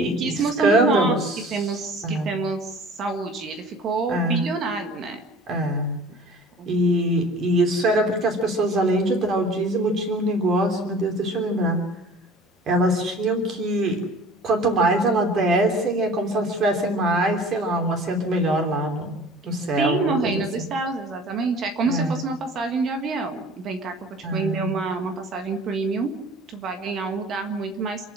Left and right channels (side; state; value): both; normal; correlation 0.46